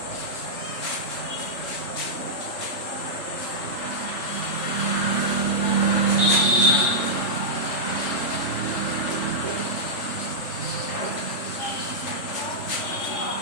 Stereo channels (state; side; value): late; right; 3.4 ms